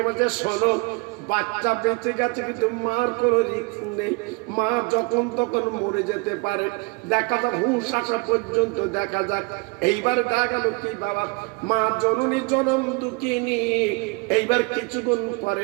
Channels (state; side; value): quieter; left; 29.5 dB